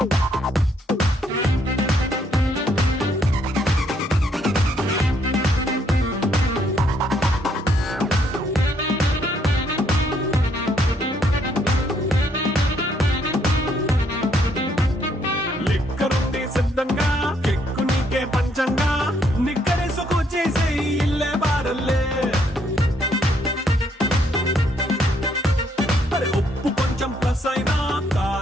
లిక్కరుంది సిద్ధంగా కెక్కు నీకే పంచంగా నిక్కరేసుకొచ్చేసే ఇల్లే బారల్లే అరే ఉప్పు కొంచెం plus అయినా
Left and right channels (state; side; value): normal; both; correlation 0.71